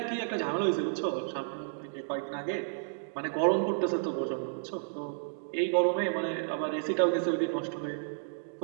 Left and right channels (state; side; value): silent; left; digital silence